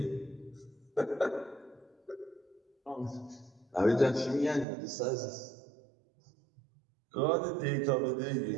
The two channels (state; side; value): drops out; left; at 4.7 s